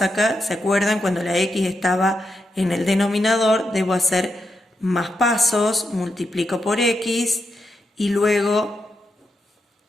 acá? ¿Se acuerdan? Cuando la X estaba en el denominador, debo hacer más pasos, multiplico por X y luego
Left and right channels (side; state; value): both; normal; correlation 0.85